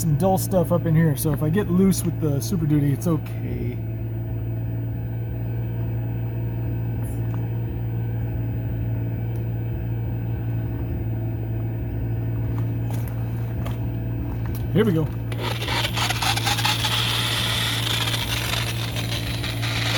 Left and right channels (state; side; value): identical; both; correlation 1.00